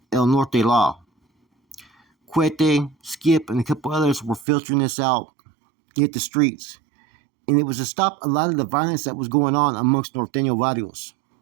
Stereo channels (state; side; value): drops out; left; at 4.5 s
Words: El Norte Law. Quete, Skip, and a couple others were filtering this out, hit the streets. And it was to stop a lot of the violence that was going on amongst Norteño barrios.